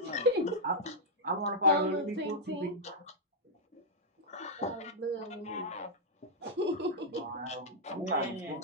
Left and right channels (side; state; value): both; normal; correlation -0.06